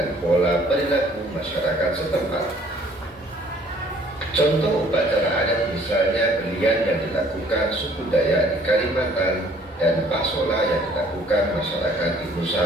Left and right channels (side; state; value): both; normal; correlation 0.58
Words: pola perilaku masyarakat setempat. Contoh upacara adat misalnya belian yang dilakukan suku Dayak di Kalimantan dan Pasola yang dilakukan masyarakat di